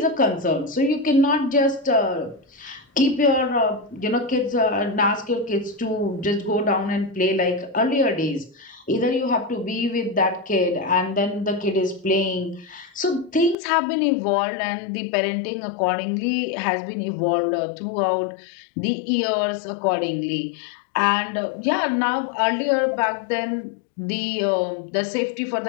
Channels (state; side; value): drops out; right; at 13.6 s